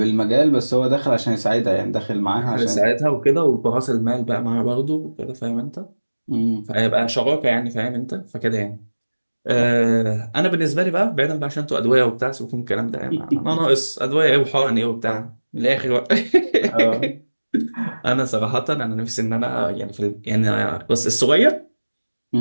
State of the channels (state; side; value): inverted; both; correlation -1.00